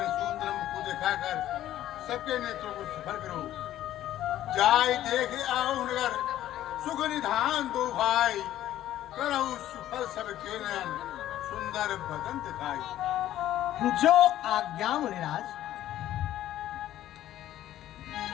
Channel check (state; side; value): quieter; right; 13.0 dB